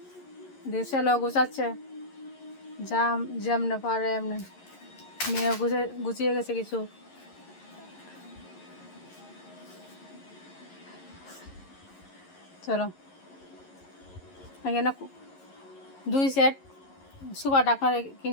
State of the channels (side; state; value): right; late; 11 ms